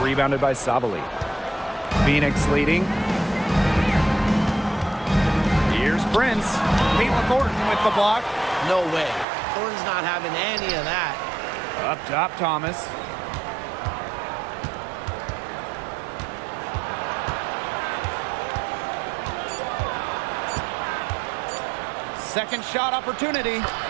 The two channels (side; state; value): left; drops out; at 9.2 s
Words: rebounded by Sabali. Phoenix leading. Here's Prince. Caitlin Thornton with the block. No way. Thornton's not having any of that. Up top, Thomas. Second shot opportunity,